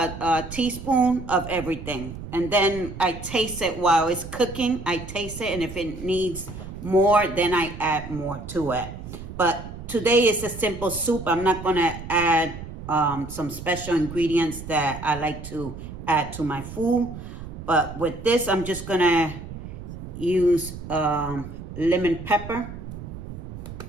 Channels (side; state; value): right; noise; rumble, 11 dB below the sound